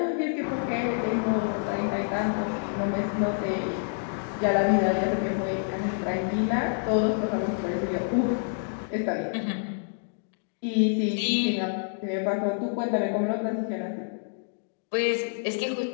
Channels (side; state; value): right; silent; digital silence